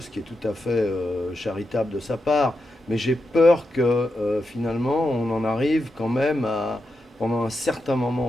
ce qui est tout à fait charitable de sa part, mais j'ai peur que finalement on en arrive quand même pendant un certain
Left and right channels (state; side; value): normal; both; correlation 0.87